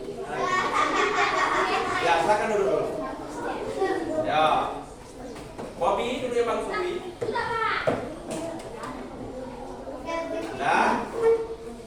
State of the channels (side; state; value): both; identical; correlation 1.00